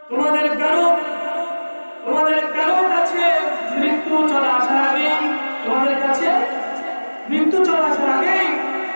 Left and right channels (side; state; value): both; inverted; correlation -1.00